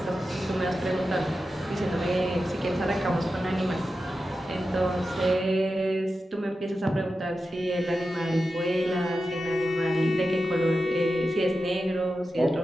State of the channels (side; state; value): both; normal; correlation 0.91